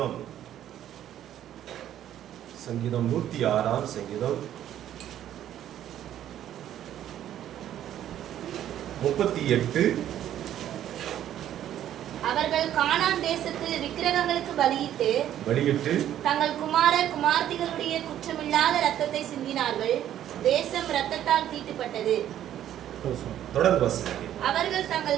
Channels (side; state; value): left; quieter; 11.4 dB